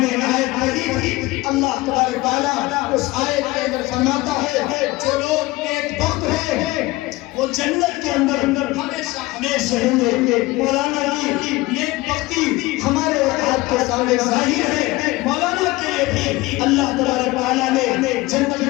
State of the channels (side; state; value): right; quieter; 20.2 dB